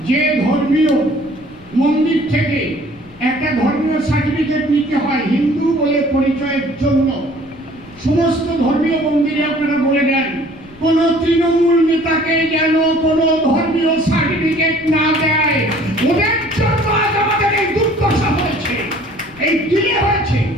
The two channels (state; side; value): noise; left; rumble, 26 dB below the sound